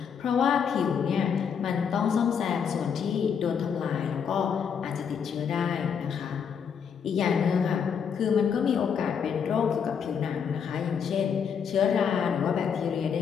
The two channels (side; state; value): right; quieter; 7.1 dB